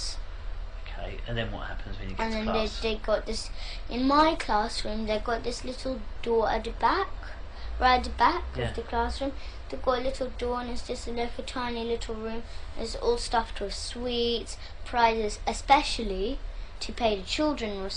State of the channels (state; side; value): identical; both; correlation 1.00